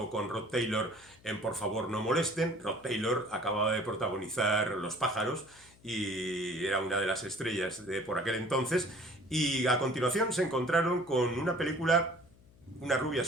con Rod Taylor en Por favor no molesten. Rod Taylor acababa de protagonizar Los pájaros y era una de las estrellas de por aquel entonces. Y a continuación se encontraron con una película, Una rubia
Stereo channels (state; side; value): noise; left; hum, 27 dB below the sound